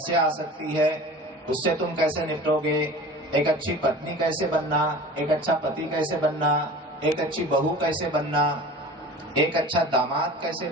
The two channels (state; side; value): normal; both; correlation 0.39